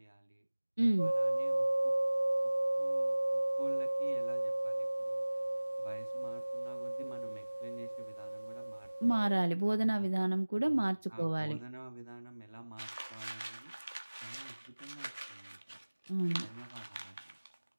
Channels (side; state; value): both; inverted; correlation -1.00